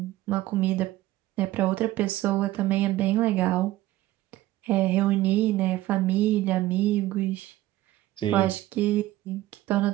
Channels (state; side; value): quieter; left; 15.9 dB